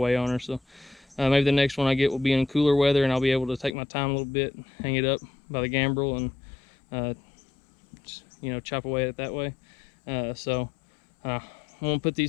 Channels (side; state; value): right; drops out; at 3.8 s